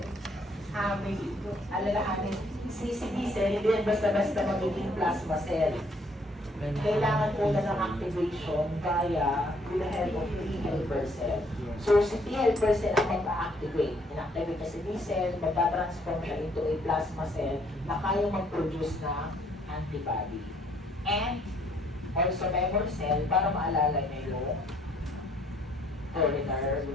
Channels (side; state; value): both; normal; correlation 0.65